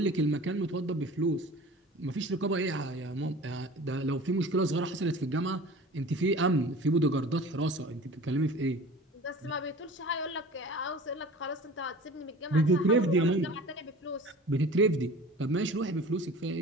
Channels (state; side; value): normal; both; correlation 0.41